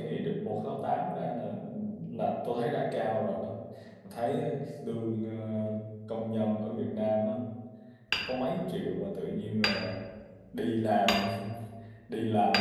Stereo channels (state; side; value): identical; both; correlation 1.00